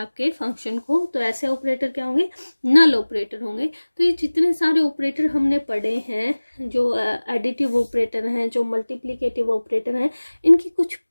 फंक्शन को। तो ऐसे ऑपरेटर क्या होंगे, नल ऑपरेटर होंगे। तो ये जितने सारे ऑपरेटर हमने पढ़े हैं, जो एडिटिव ऑपरेटर हैं, जो मल्टीप्लिकेटिव ऑपरेटर हैं, इनकी कुछ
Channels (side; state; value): both; inverted; correlation -1.00